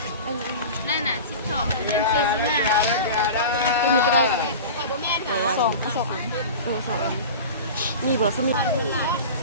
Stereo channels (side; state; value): both; inverted; correlation -0.32